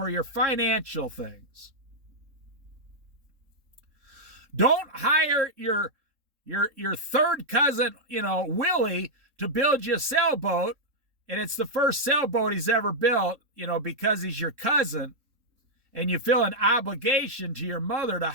your financial things. Don't hire your third cousin, Willie, to build you a sailboat, and it's the first sailboat he's ever built, because he's your cousin, and you feel an obligation to your mother to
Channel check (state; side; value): late; left; 3.7 ms